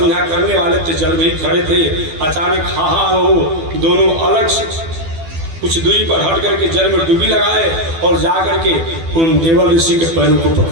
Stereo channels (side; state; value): left; late; 12 ms